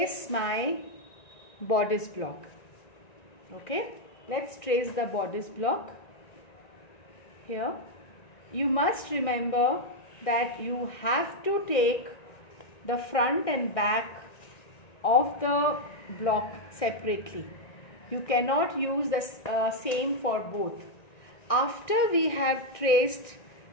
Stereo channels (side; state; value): right; late; 1.9 ms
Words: my bodice block. Okay, let's trace the bodice block here. You must remember that you have to take the front and back of the block separately. You cannot use the same for both. After we have traced